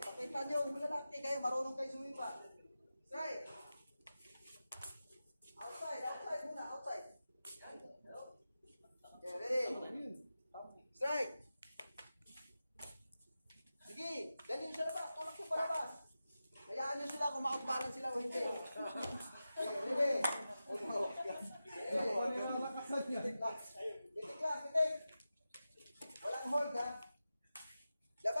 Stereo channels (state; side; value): inverted; both; correlation -0.93